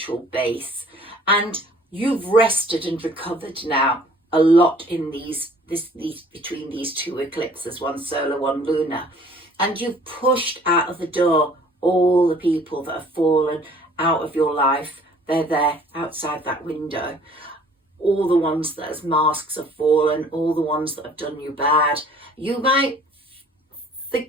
base, and you've rested and recovered now a lot in these between these two eclipses, one solar, one lunar, and you've pushed out of the door all the people that have fallen out of your life. They're there outside that window. All the ones that as masks have fallen, all the ones that have done you bad. You might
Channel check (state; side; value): normal; both; correlation 0.54